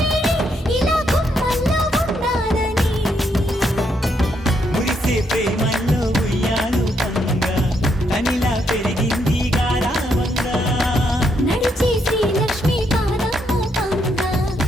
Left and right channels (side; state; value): both; normal; correlation 0.76